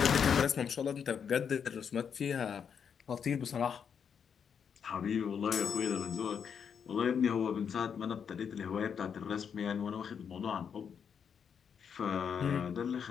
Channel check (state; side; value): quieter; right; 7.2 dB